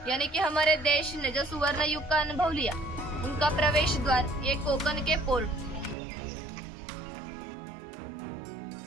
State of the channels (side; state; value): left; drops out; at 6.0 s